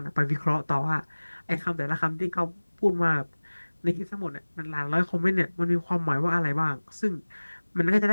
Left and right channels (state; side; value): inverted; both; correlation -1.00